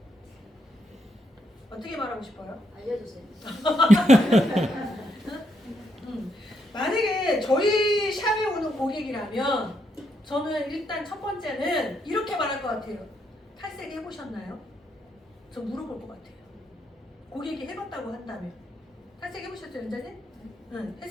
어떻게 말하고 싶어요? 알려주세요. 만약에 저희 샵에 오는 고객이라면 저는 일단 첫 번째는 이렇게 말할 것 같아요. 탈색 해보셨나요? 저 물어볼 것 같아요. 고객이 해봤다고 한다면. 탈색 해보셨죠, 연자님? 응.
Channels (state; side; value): normal; both; correlation 0.78